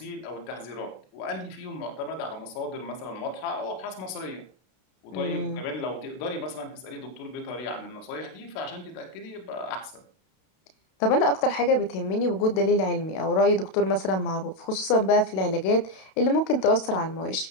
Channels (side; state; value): right; late; 32 ms